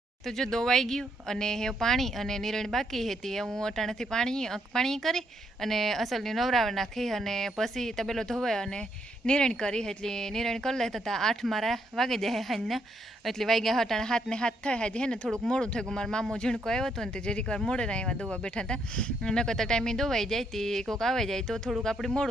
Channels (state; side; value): normal; both; correlation 0.75